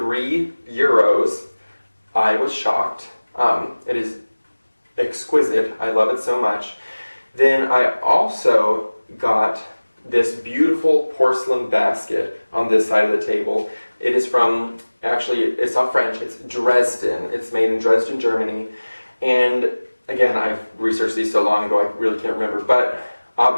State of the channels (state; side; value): inverted; both; correlation -1.00